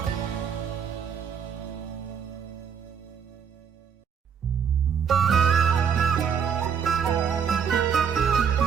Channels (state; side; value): quieter; left; 7.2 dB